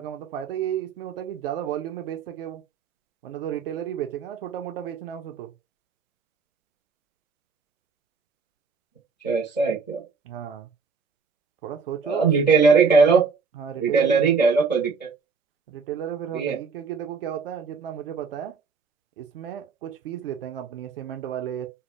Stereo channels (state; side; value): quieter; left; 5.1 dB